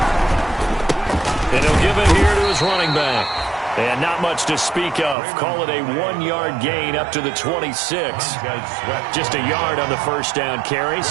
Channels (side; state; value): left; drops out; at 5.2 s